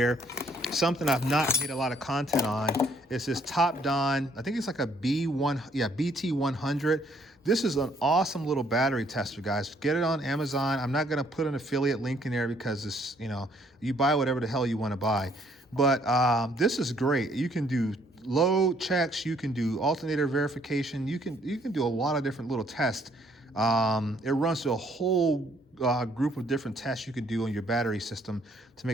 something I've not made a lot of content on is this Top Don. I think it's like a BT100. This is an awesome little battery tester, guys. Get it on Amazon. I'm not going to put an affiliate link in there because this, you buy whatever the hell you want to buy. But this is great. You can do load checks. You can do alternator verification. You can do a lot of different little tests. It runs through a whole group of different tests you can do on your battery system to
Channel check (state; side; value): normal; both; correlation 0.65